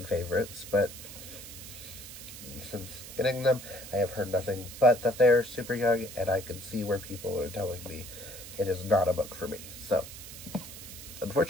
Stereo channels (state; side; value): noise; right; hiss, 13 dB below the sound